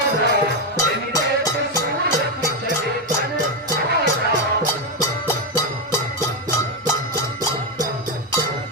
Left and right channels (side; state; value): both; normal; correlation 0.07